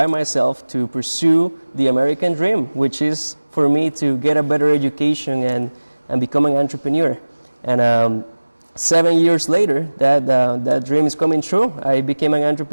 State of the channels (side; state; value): both; inverted; correlation -1.00